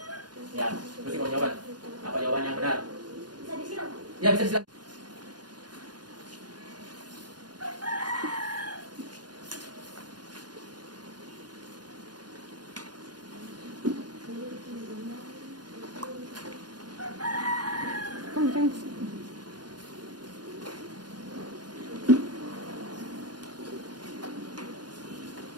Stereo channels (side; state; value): left; late; 0.70 ms